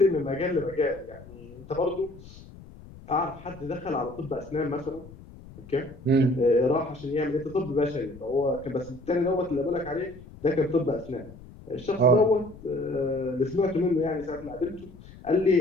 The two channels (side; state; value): left; noise; rumble, 19 dB below the sound